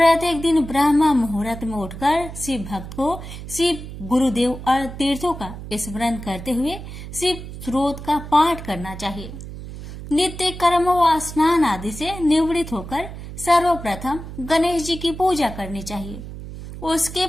दिन ब्रह्म मुहूर्त में उठकर शिव भक्त को शिव गुरुदेव और तीर्थों का स्मरण करते हुए शिव स्रोत का पाठ करना चाहिए। नित्य कर्म व स्नान आदि से निवृत्त होकर सर्वप्रथम गणेश जी की पूजा करनी चाहिए। उसके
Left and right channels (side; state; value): right; noise; hum, 11 dB below the sound